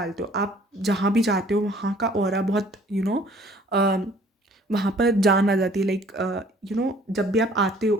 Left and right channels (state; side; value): normal; both; correlation 0.55